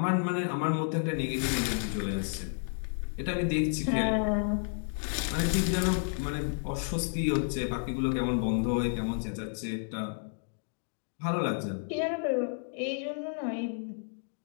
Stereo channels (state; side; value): silent; right; digital silence